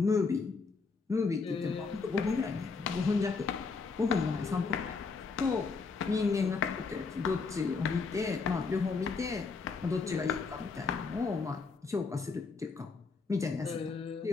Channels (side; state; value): right; quieter; 4.6 dB